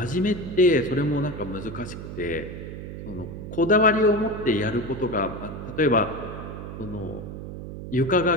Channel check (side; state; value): right; noise; hum, 9 dB below the sound